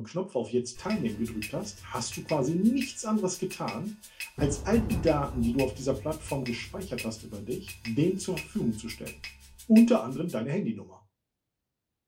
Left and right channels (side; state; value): both; identical; correlation 1.00